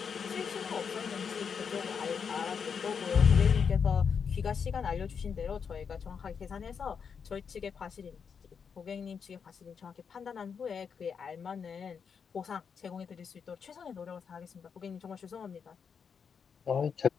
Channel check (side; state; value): right; quieter; 6.5 dB